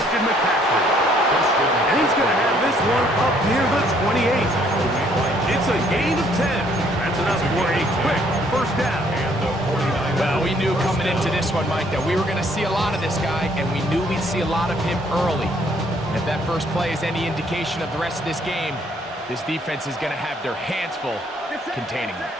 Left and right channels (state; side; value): normal; both; correlation 0.65